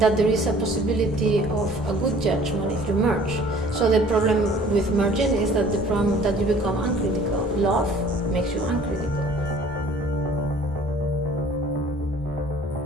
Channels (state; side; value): normal; both; correlation 0.52